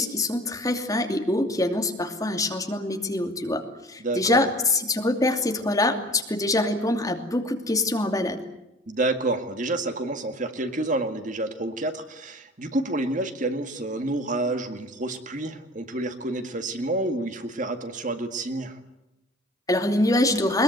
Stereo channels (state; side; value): normal; both; correlation 0.46